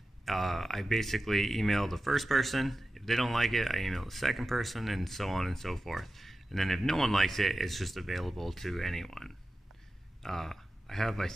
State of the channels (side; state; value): both; normal; correlation 0.93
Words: I basically email the first person. If they don't like it, I email the second person, and so on and so forth. And then if no one likes it, it's just available to anyone. I have, I